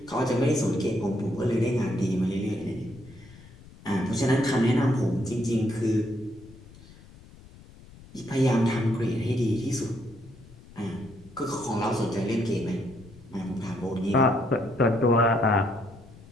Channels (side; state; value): left; noise; rumble, 21 dB below the sound